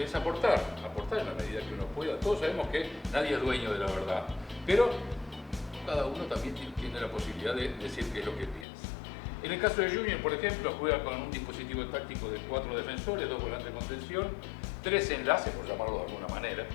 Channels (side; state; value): right; drops out; at 8.7 s